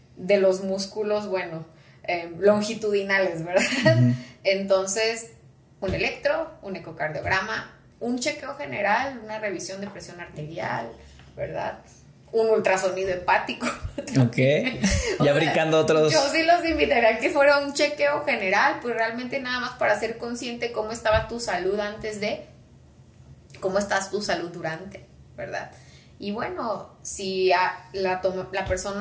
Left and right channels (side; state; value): both; identical; correlation 1.00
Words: de los músculos, longitudinales, ¿verdad? Entonces, un electro, un ecocardiograma, un chequeo general, una revisión de presión arterial, ¿verdad? Un ultrasonido hepático. Ok. Ya brincando otros. Yo sí los invitaría a que fuera un chequeo general, pues realmente nada más para ser consciente cómo estaba tu salud antes de, cómo estás tu salud durante, ¿verdad? Y bueno, si la